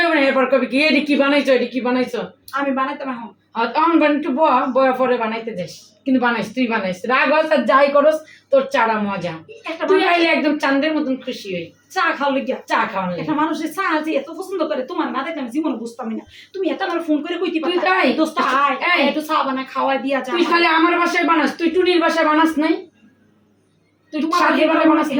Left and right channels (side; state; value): both; identical; correlation 1.00